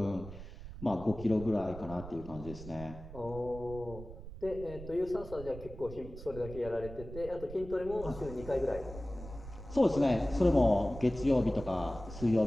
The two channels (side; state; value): right; noise; rumble, 13 dB below the sound